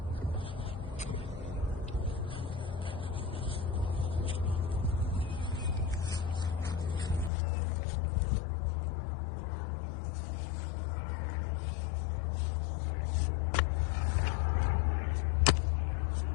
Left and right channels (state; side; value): drops out; right; at 7.3 s